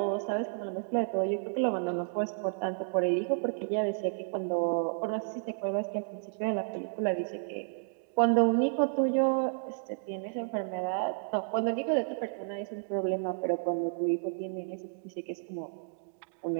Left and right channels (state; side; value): silent; left; digital silence